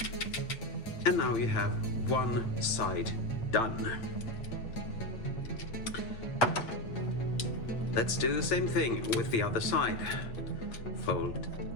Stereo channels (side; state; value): right; late; 8.4 ms